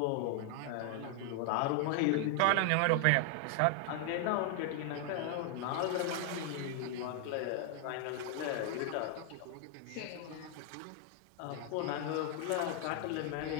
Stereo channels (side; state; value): both; different; correlation 0.00